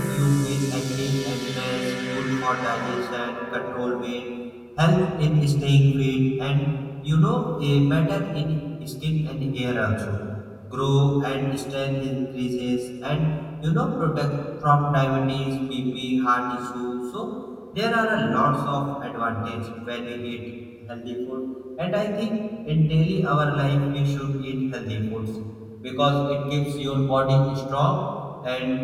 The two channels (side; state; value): both; identical; correlation 1.00